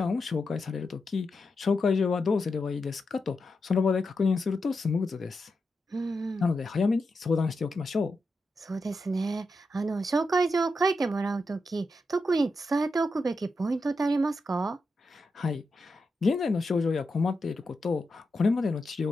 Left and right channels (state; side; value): normal; both; correlation 0.87